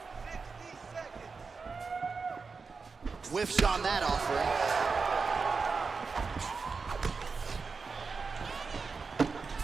Whiffs on that offering.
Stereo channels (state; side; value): quieter; left; 4.7 dB